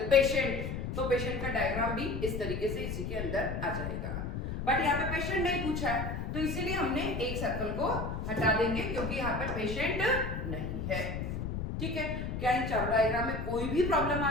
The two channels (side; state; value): left; noise; rumble, 4 dB below the sound